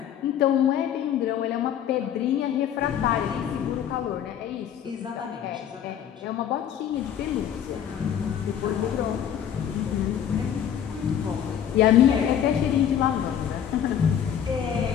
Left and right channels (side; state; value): right; quieter; 9.4 dB